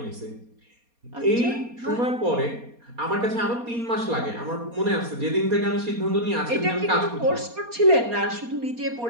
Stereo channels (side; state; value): left; late; 4.2 ms